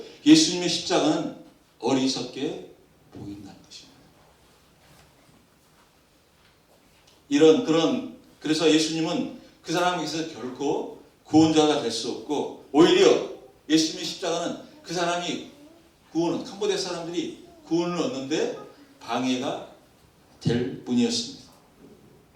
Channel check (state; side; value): identical; both; correlation 1.00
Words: 예수님의 십자가는 어리석게 보인다는 것입니다. 그래서 예수님은 그 사람에게 있어서 결코 구원자가 될 수 없고 오히려 예수님의 십자가는 그 사람이 캄보디아 사람들이 구원을 얻는데 방해가 될 뿐이었습니다.